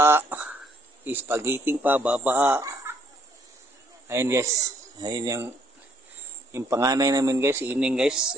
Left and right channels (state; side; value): normal; both; correlation 0.66